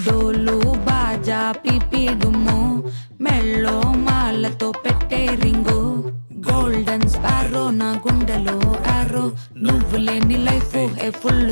డోలు బాజా పిపిడుము మెళ్ళో మాలతో పెట్టే రింగు గోల్డెన్ స్పారో నా గుండెలో ఆరో నువ్వు లేని life A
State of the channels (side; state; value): both; inverted; correlation -1.00